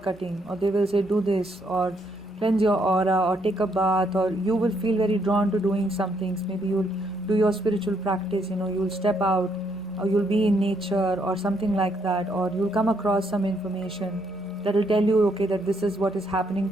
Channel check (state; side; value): normal; both; correlation 0.74